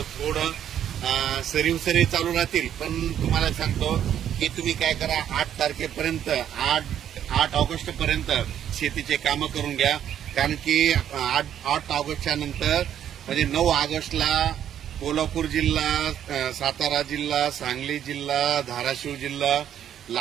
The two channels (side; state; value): left; quieter; 10.0 dB